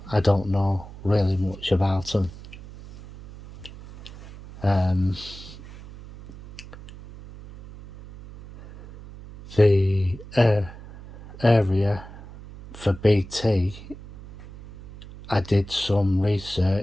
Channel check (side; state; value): right; noise; hum, 16 dB below the sound